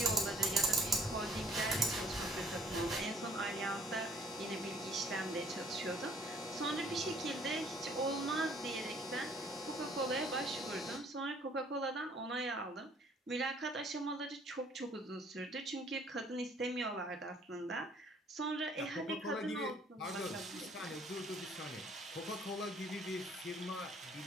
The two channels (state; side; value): normal; both; correlation 0.58